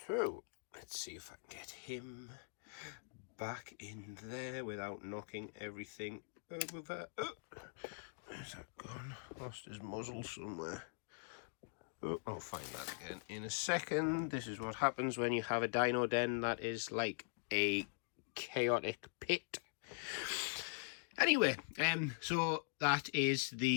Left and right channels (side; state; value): right; silent; digital silence